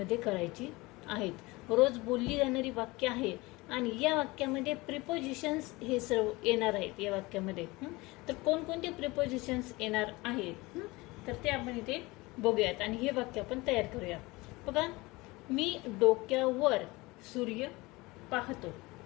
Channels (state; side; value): quieter; right; 22.4 dB